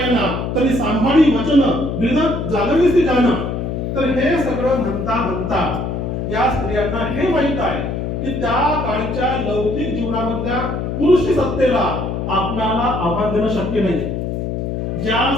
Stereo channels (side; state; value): left; noise; hum, 3 dB below the sound